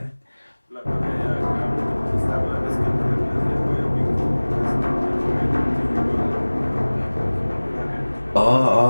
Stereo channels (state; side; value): inverted; both; correlation -1.00